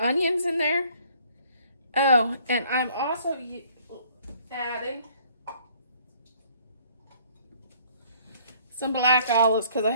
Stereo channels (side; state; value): both; inverted; correlation -0.59